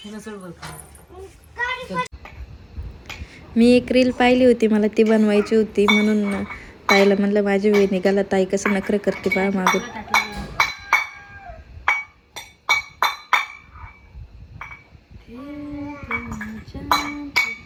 हिला सोड बरं खाली. मी एक रील पाहिली होती मला ती बनवायची होती म्हणून ताईला म्हणलं माझी वेळ निघाला. ताई कसं नखरं करते बाळ मागून.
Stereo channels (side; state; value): both; identical; correlation 1.00